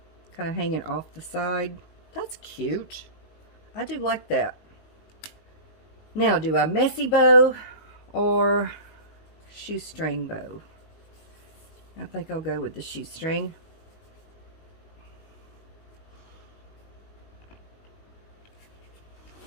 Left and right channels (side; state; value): right; late; 19 ms